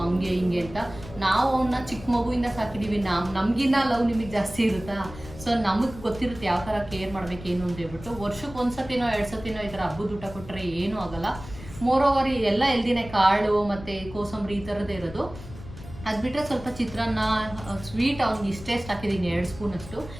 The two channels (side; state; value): left; noise; rumble, 15 dB below the sound